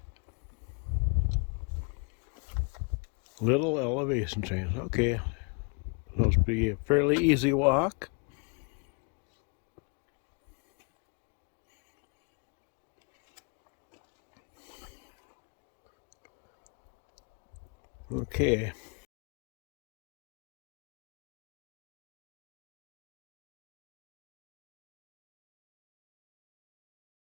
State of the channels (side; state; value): right; quieter; 34.8 dB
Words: Little elevation change. Okay, supposed to be a fairly easy walk. Okay.